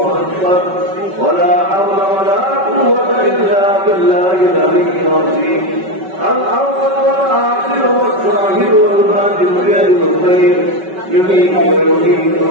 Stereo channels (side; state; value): left; late; 5.3 ms